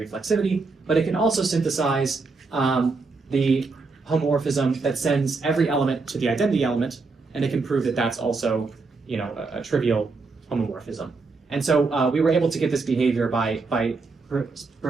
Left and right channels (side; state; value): left; quieter; 4.1 dB